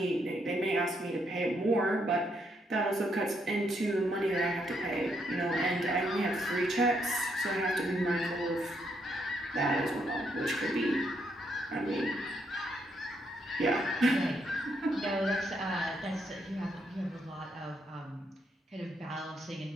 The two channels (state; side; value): normal; both; correlation 0.76